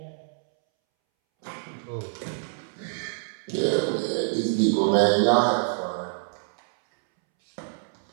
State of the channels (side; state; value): left; silent; 61 dB below the other